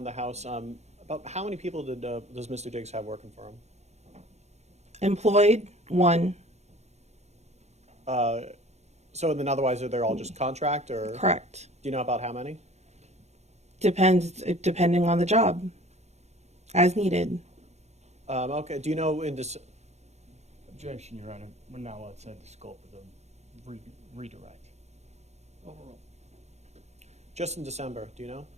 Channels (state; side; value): late; left; 0.32 ms